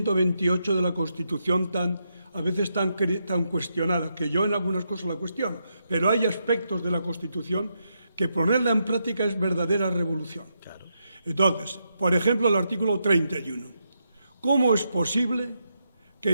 de la Constitución a veces tan cuestionada, que yo en algunas cosas la cuestiono, pero hay aspectos de la Constitución que ponerla en práctica es verdadera revolución. Claro. Entonces, por ejemplo, el artículo 31. ¿Cómo es posible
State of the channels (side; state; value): both; inverted; correlation -0.82